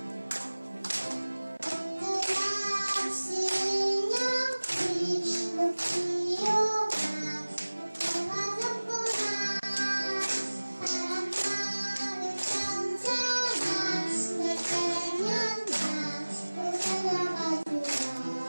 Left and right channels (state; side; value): inverted; both; correlation -1.00